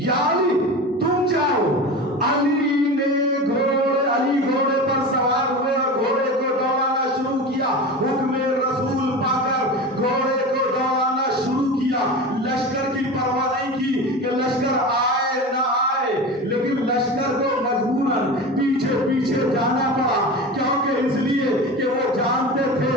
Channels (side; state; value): both; normal; correlation 0.29